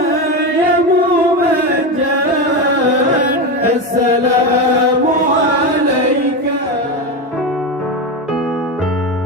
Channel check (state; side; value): normal; both; correlation 0.16